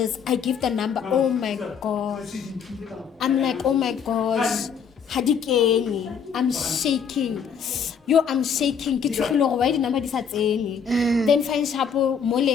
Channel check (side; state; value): right; quieter; 6.8 dB